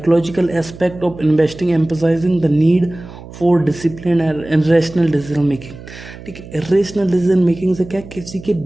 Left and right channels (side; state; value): right; noise; hum, 16 dB below the sound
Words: aspect of investing, emphasising the need for discipline and irrational decision making. ठीक है, इरेशनल डिसीजन मेकिंग से क्या, किसी के